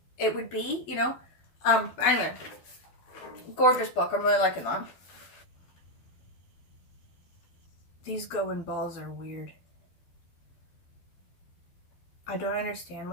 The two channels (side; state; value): right; late; 12 ms